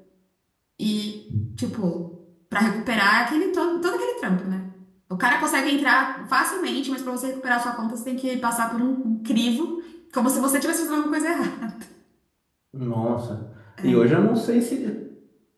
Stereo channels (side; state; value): both; identical; correlation 1.00